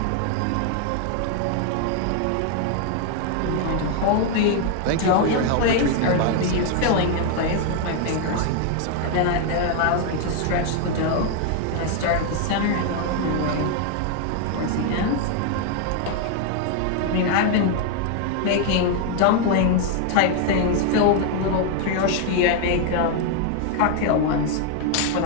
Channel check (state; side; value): different; both; correlation 0.00